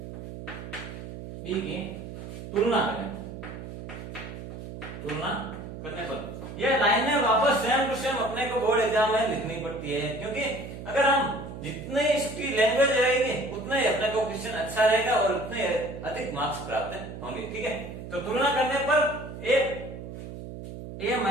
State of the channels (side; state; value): right; noise; hum, 10 dB below the sound